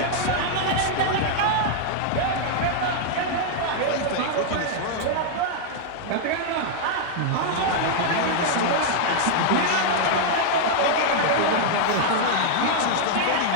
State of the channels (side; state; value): both; different; correlation -0.01